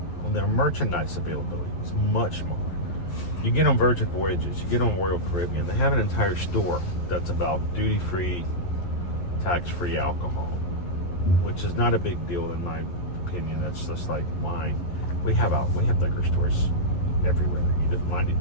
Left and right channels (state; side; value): late; right; 11 ms